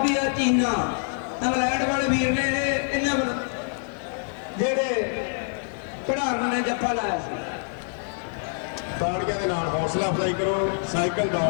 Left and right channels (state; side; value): silent; right; 61 dB below the other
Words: ਚੀਨਾ ਇੰਗਲੈਂਡ ਵਾਲੇ ਵੀਰ ਨੇ ਇਹਨਾਂ ਵੱਲ ਜਿਹੜੇ ਖਿਡਾਰਨ ਨੇ ਜੱਫਾ ਲਾਇਆ ਸੀ ਤਾੜੀਆਂ ਦੇ ਨਾਲ ਹੌਸਲਾ ਅਫਜ਼ਾਈ ਕਰੋ ਸਾਈਕਲ